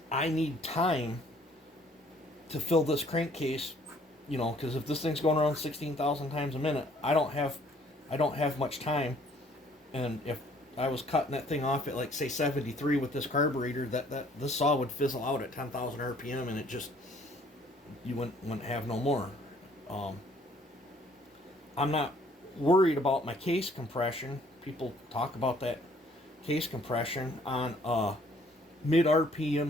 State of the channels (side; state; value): both; normal; correlation 0.60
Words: I need time to fill this crankcase, you know, because if this thing's going around 16,000 times a minute, I don't have much time. And if I was cutting that thing off at, like, say 73 with this carburetor, this saw would fizzle out at 10,000 RPM, and it just, you wouldn't have no more. I'm not worried about my case compression. People talk about that case compression on a mid